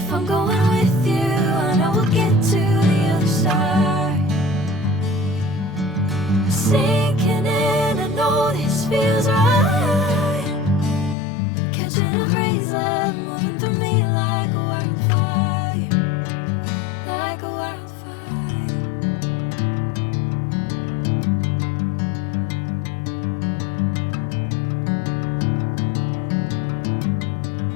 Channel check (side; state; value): right; drops out; at 11.2 s